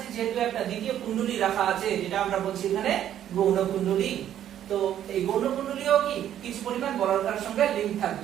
যেহেতু একটা দ্বিতীয় কুণ্ডলী রাখা আছে, যেটা আমরা বলছি এখানে গৌণ কুণ্ডলী, তো এই গৌণ কুণ্ডলীও কি কিছু পরিমাণ বলয়ের সঙ্গে লিংক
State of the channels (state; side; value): quieter; left; 10.9 dB